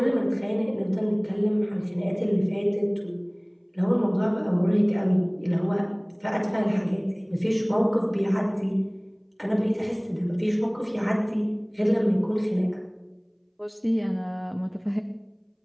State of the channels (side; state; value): both; identical; correlation 1.00